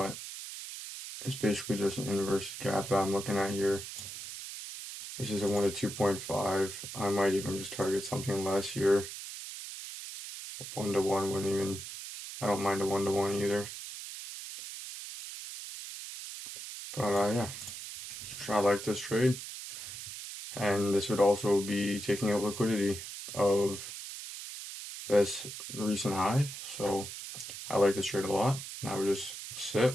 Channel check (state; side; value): noise; right; hiss, 9 dB below the sound